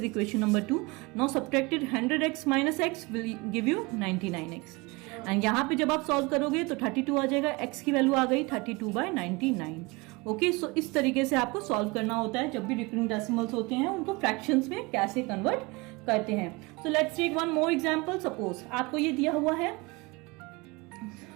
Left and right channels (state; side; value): quieter; left; 25.5 dB